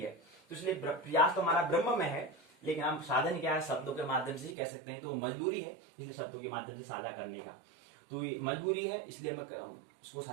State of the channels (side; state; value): left; drops out; at 4.5 s